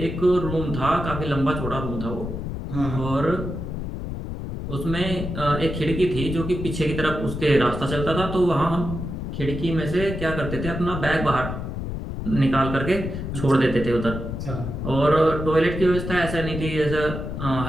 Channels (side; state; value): left; noise; rumble, 5 dB below the sound